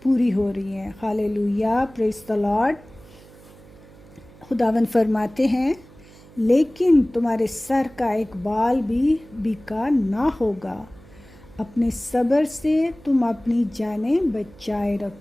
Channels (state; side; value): noise; right; hum, 23 dB below the sound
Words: پوری ہو رہی ہیں. ہالےلویا. پریز دی لارڈ. خداوند فرماتے ہیں لیکن تمہارے سر کا ایک بال بھی بیکار نہ ہوگا، اپنے صبر سے تم اپنی جانیں بچائے